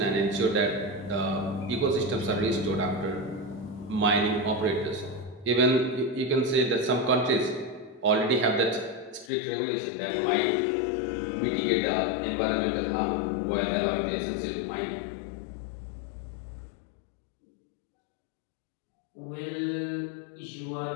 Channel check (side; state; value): right; drops out; at 9.3 s